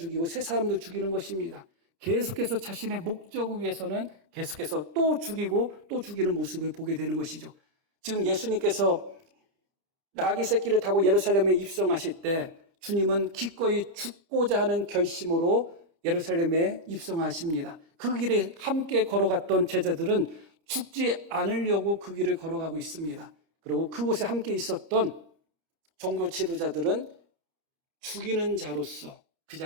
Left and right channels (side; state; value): left; late; 30 ms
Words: 세 사람도 죽이는 것입니다. 계속해서 자신의 목적을 위해서는 계속해서 또 죽이고 또 죽이는 모습을 보게 되는 것이죠. 지금 예수님께서 나귀 새끼를 타고 예루살렘에 입성하실 때 주님은 기꺼이 죽고자 하는 결심으로 예루살렘에 입성하십니다. 그 길에 함께 걸어갔던 제자들은 죽지 않으려고 그 길을 걸어가고 있습니다. 그리고 그곳에 함께 있었던 종교 지도자들은 죽이는 자로서 그